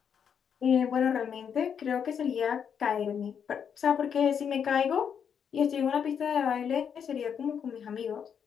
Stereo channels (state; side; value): quieter; right; 7.6 dB